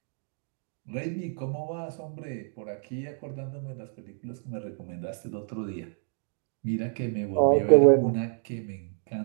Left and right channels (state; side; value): silent; left; 59 dB below the other